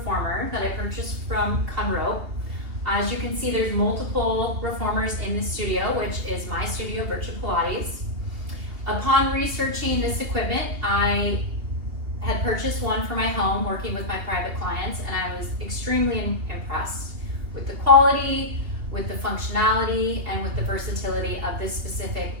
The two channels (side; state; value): left; late; 3.0 ms